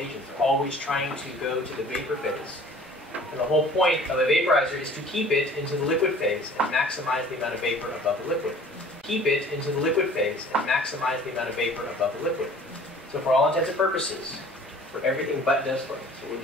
agents. They're always trying to go to the vapor phase. And the whole point of a vaporizer is to keep it into the liquid phase and maximize the amount of vapor above the liquid. Keep it into the liquid phase and maximize the amount of vapor above the liquid. So for all intents and purposes, for everything but desflurane, so we'll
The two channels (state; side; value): normal; both; correlation 0.49